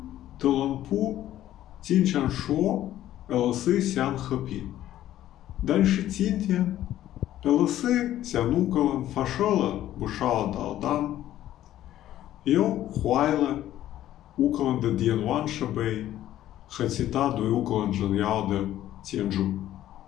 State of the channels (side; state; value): right; quieter; 13.0 dB